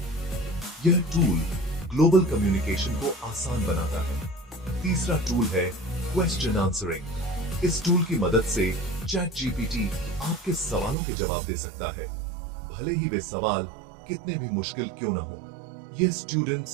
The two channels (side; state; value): left; drops out; at 11.0 s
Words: यह टूल ग्लोबल कम्युनिकेशन को आसान बनाता है। तीसरा टूल है क्वेश्चन आंसरिंग। इस टूल की मदद से चैट जीपीटी आपके सवालों के जवाब दे सकता है, भले ही वे सवाल कितने भी मुश्किल क्यों न हो। यह